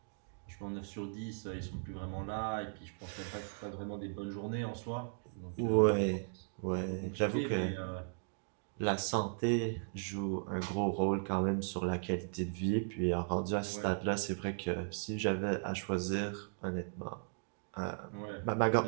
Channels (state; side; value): silent; left; digital silence